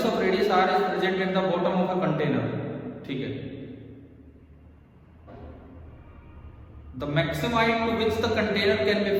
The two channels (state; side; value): identical; both; correlation 1.00